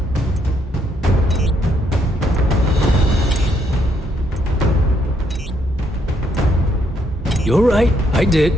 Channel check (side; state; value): both; normal; correlation 0.73